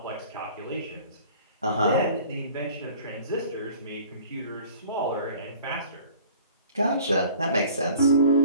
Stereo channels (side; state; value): both; inverted; correlation -0.49